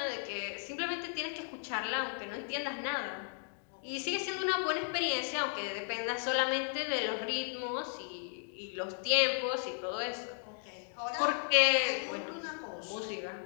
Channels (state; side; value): silent; right; 54 dB below the other